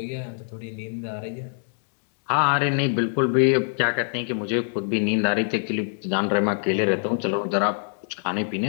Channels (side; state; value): right; silent; 62 dB below the other